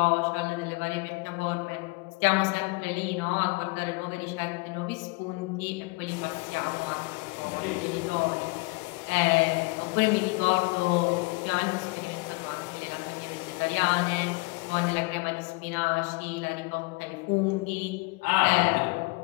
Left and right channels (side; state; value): right; quieter; 26.4 dB